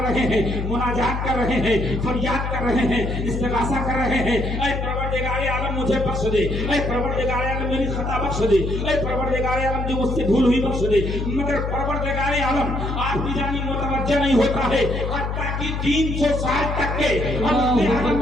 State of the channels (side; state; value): left; noise; hum, 3 dB below the sound